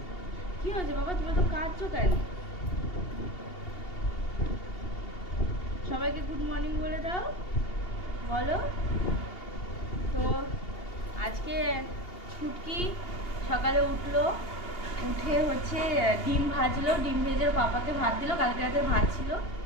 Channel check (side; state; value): right; late; 2.8 ms